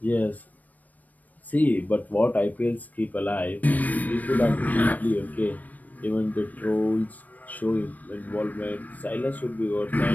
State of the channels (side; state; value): right; late; 0.079 ms